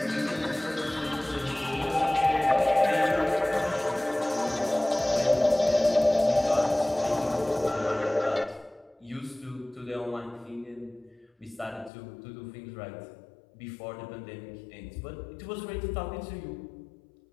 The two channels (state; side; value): drops out; right; at 11.9 s